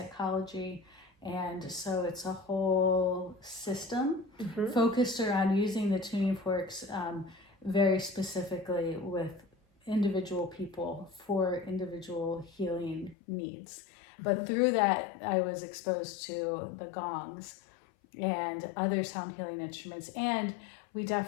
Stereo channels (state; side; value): drops out; right; at 13.2 s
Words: And so it's a whole system focused around using the tuning forks very specifically with individual people for individual healing needs. But through that, I was exposed to the gongs and other sound healing instruments. And we